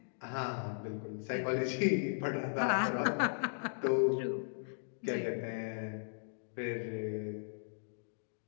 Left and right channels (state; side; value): silent; right; digital silence